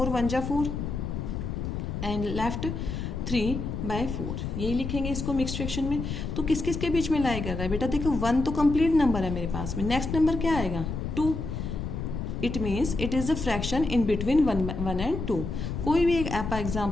1 जा 4 एंड लेफ्ट 3/4, यही लिखेंगे इसको मिक्स्ड फ्रैक्शन में। तो किस किस के बीच में लाई कर रहा है बेटा, देखो 1 तो कंप्लीट नंबर है मेरे पास में, नेक्स्ट नंबर क्या आएगा 2। It means it is the fraction in between 1 and 2। कोई भी एक आप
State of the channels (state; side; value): noise; left; rumble, 4 dB below the sound